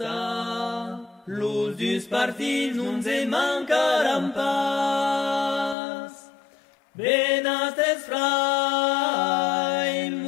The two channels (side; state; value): right; drops out; at 5.8 s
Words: luz du spartin non se mancaram pas. Benastes frai